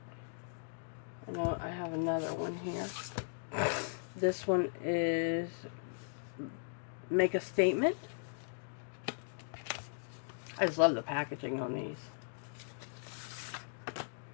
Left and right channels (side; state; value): right; silent; digital silence